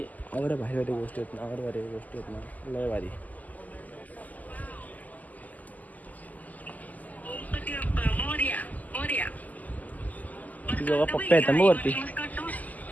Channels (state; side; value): late; right; 0.079 ms